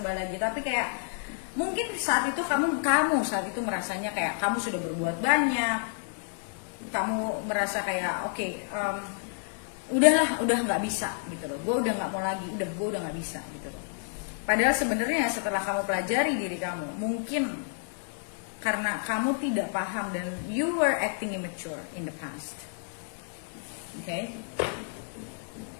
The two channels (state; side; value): silent; right; 55 dB below the other